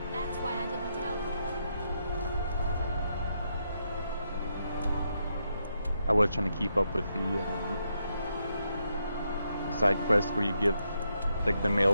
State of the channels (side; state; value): both; inverted; correlation -0.80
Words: that's why I didn't tell you. I was trying to keep up with the side quest where you give like the